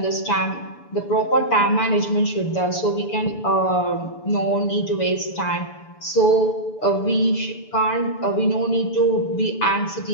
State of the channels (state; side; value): late; right; 6.9 ms